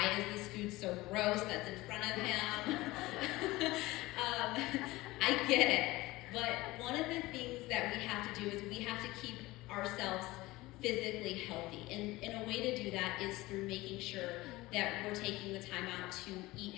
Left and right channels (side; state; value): right; quieter; 19.6 dB